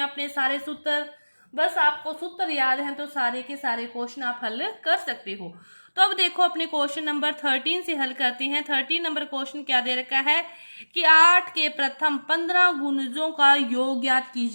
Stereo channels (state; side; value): inverted; both; correlation -1.00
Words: अपने सारे सूत्र। बस आपको सूत्र याद है तो सारे के सारे क्वेश्चन आप हल कर सकते हो। तो अब देखो अपने क्वेश्चन नंबर 13 से हल करते हैं। 13 नंबर क्वेश्चन क्या दे रखा है कि 8 के प्रथम 15 गुणजों का योग ज्ञात